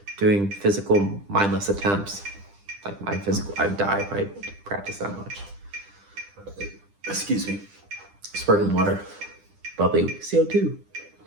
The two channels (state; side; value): late; left; 10 ms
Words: doing physical mindless attempts. Like my physical, I'd die if I practice that much. Excuse me. Sparkling water. Bubbly CO2.